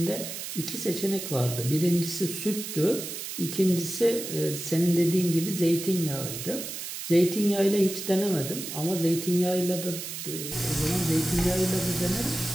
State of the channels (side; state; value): right; noise; hiss, 7 dB below the sound